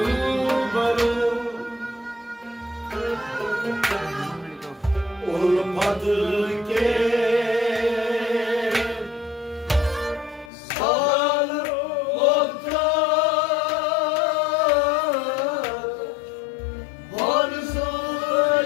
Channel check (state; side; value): drops out; right; at 10.5 s